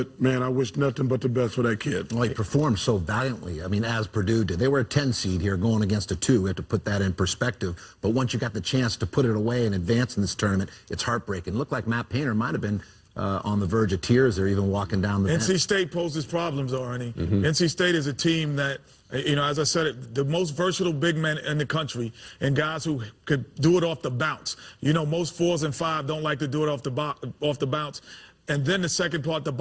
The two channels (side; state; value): both; identical; correlation 1.00